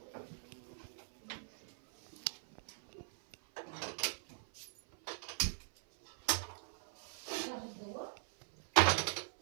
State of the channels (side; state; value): left; silent; 51 dB below the other